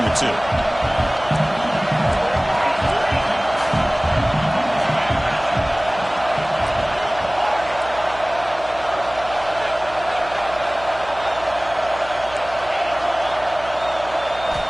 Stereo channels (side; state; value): right; noise; hum, 17 dB below the sound